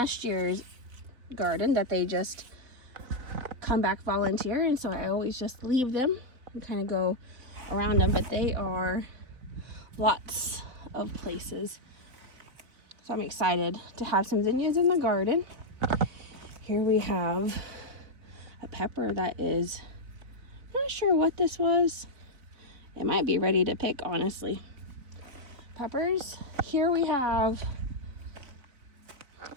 year's garden that they just come back volunteer, and so I always just leave them and kind of go around them, but they are lots of places. So I'm excited to have some zinnias in the garden. Here we have a pepper that is, I'm not sure what this was. It might be ready to pick, honestly. Peppers. Here we have,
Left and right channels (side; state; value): left; late; 4.0 ms